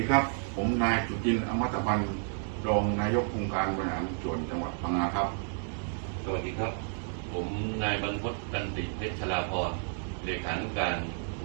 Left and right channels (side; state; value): left; silent; 57 dB below the other